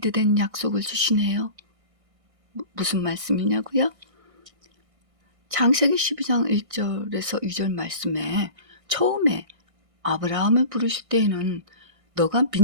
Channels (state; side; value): late; left; 1.6 ms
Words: 약속을 주시네요. 무슨 말씀이냐고요? 창세기 12장 1절에서 2절 말씀에 처음에 아브라함을 부르실 때에는 너가